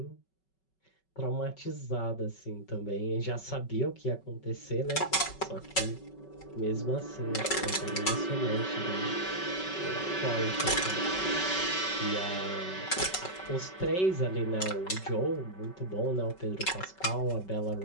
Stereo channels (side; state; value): right; late; 5.3 ms